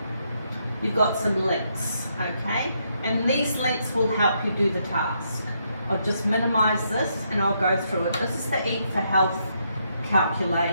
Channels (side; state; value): both; inverted; correlation -0.77